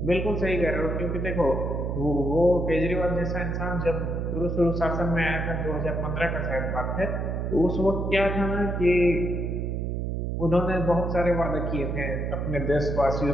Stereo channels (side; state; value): right; noise; hum, 1 dB below the sound